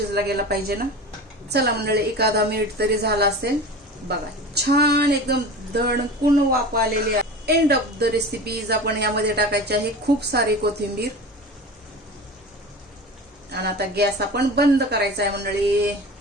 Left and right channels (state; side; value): normal; both; correlation 0.33